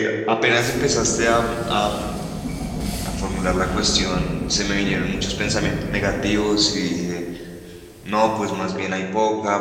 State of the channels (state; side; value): identical; both; correlation 1.00